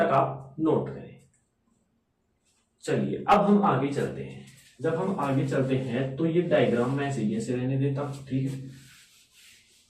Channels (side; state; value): both; identical; correlation 1.00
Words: आप नोट करें। चलिए अब हम आगे चलते हैं। जब हम आगे चलते हैं तो ये डायग्राम मैं ऐसे रहने देता हूं, ठीक है।